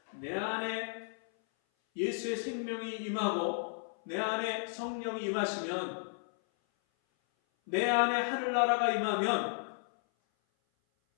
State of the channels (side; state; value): right; silent; 55 dB below the other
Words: 내 안에 예수의 생명이 임하고 내 안에 성령이 임하시면, 내 안에 하늘나라가 임하면